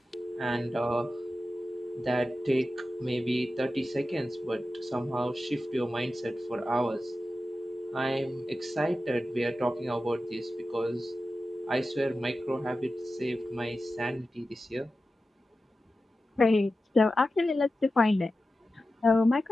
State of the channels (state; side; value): normal; both; correlation 0.93